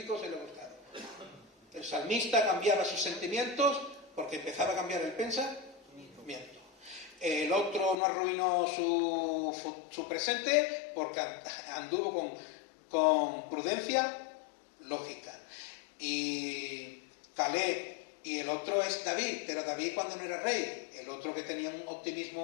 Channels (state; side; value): drops out; right; at 8.0 s